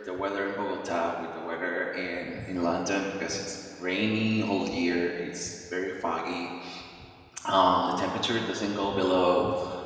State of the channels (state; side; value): identical; both; correlation 1.00